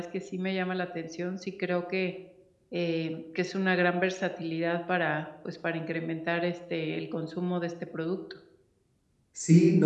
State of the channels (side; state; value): both; identical; correlation 1.00